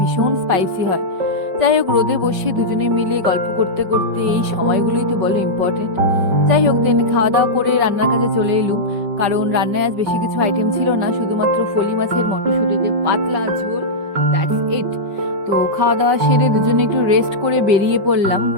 স্পাইসি হয়। যাই হোক, রোদে বসে দুজনে মিলে গল্প করতে করতে এই সময়গুলোই তো বলো ইম্পর্টেন্ট। যাই হোক, দেন খাওয়া দাওয়া করে রান্নার কাজে চলে এলুম, কারণ রান্নায় আজ বেশি কিছু আইটেম ছিল না, শুধুমাত্র ফলি মাছের মটরশুঁটি দিয়ে পাতলা ঝোল, দ্যাটস ইট। তো খাওয়া দাওয়া সেরে দুজনে একটু রেস্ট করে বেরিয়ে পড়লাম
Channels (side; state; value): left; late; 5.3 ms